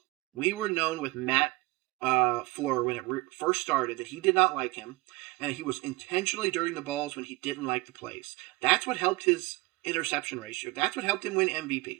We were known with Matt Fleur when it first started that he did not like him, and he was intentionally dirting the balls when he didn't like the plays. That's what helped his interception ratio. That's what helped him win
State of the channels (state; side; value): quieter; left; 22.5 dB